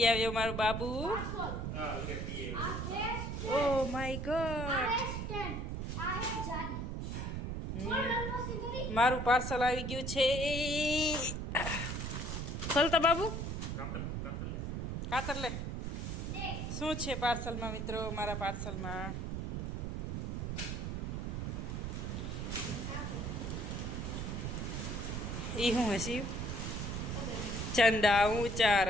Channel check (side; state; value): right; noise; rumble, 3 dB below the sound